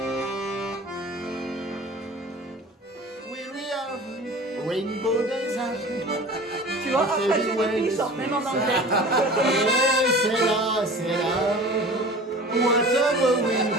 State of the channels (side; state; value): both; normal; correlation 0.41